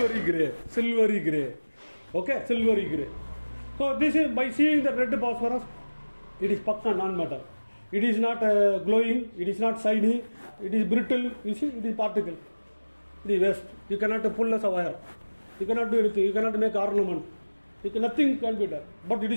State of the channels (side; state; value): both; inverted; correlation -1.00